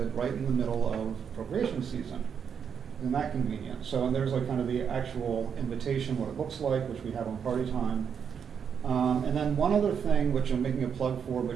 right in the middle of appropriation season. Isn't that convenient? So and there's kind of the actual invitation, what it looks like, which we have on Party Time. And then one other thing, which I'm making a plug for,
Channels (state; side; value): quieter; left; 7.2 dB